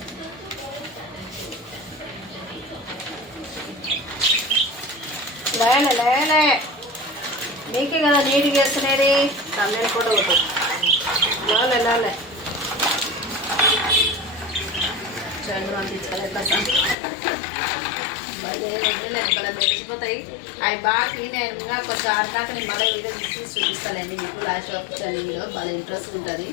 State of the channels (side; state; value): right; drops out; at 16.9 s